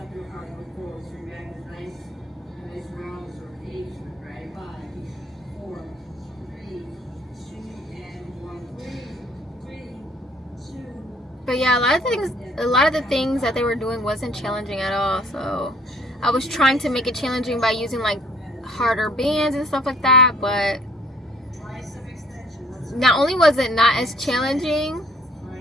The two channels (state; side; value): normal; both; correlation 0.58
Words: your heart, look forward, so your back is nice round, sort of H, right? 5, 4, 3, 2, and 1, 3, 2. But yeah, a lot of the things that they were doing wasn't challenging at all. So I was trying to make it challenging by using like harder bands and stuff like that, but not only was it not as challenging,